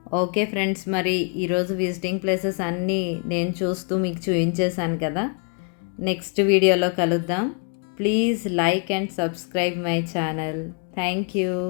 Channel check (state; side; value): quieter; right; 39.5 dB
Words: ఓకే ఫ్రెండ్స్, మరి ఈరోజు విజిటింగ్ ప్లేసెస్ అన్నీ నేను చూస్తూ మీకు చూపించేశాను కదా. నెక్స్ట్ వీడియోలో కలుద్దాం. Please like and subscribe my channel. Thank you.